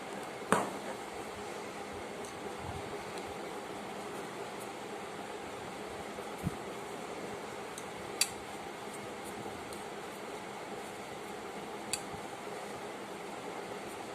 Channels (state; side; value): identical; both; correlation 1.00